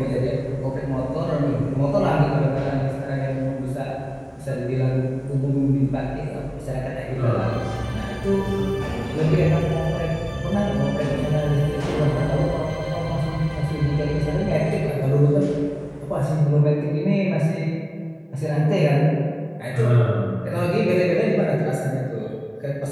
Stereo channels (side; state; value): both; identical; correlation 1.00